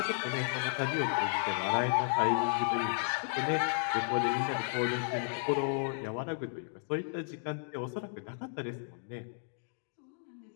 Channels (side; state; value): right; silent; digital silence